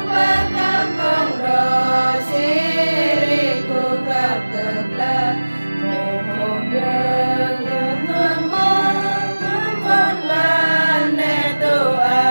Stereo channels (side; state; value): both; inverted; correlation -1.00